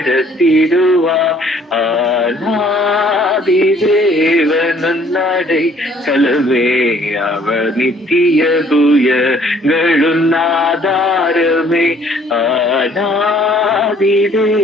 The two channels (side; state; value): both; normal; correlation 0.59